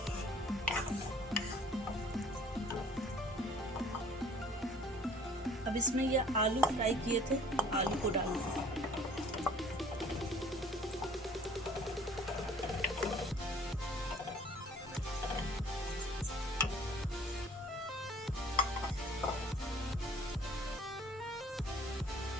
अब इसमें ये आलू फ्राई किए थे, आलू को डालना है।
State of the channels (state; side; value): normal; both; correlation 0.53